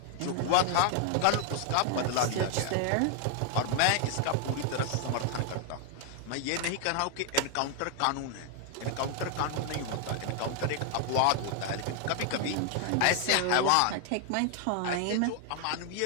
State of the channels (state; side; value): different; both; correlation 0.00